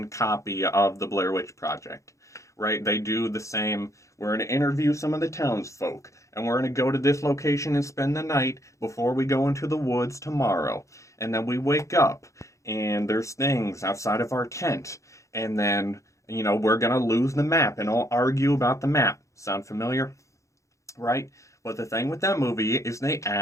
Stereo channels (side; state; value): right; late; 0.15 ms